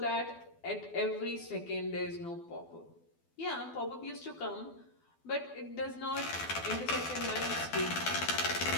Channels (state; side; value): late; right; 12 ms